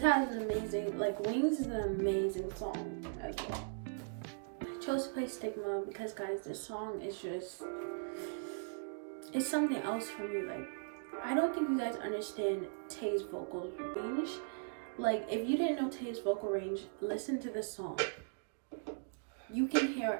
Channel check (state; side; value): silent; left; digital silence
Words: has an amazing, like, Wings is an amazing song as well. I chose to play Stigma because, guys, this song is just, it's something else for me. Like, I don't think you guys understand Tae's vocal range. Like, if you didn't know Tae's vocal range, listen to this song. You can